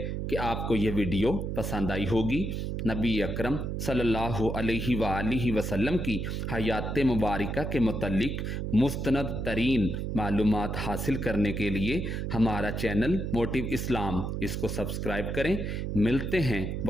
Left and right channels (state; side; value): noise; right; hum, 3 dB below the sound